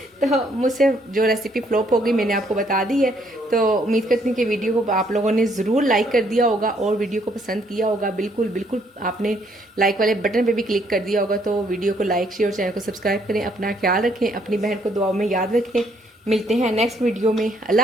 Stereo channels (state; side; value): normal; both; correlation 0.68